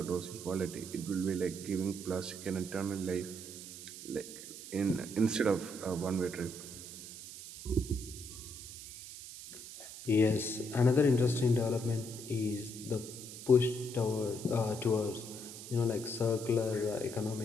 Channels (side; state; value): right; noise; hiss, 12 dB below the sound